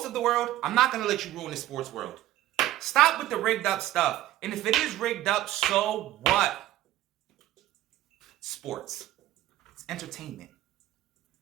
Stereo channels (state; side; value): quieter; left; 14.2 dB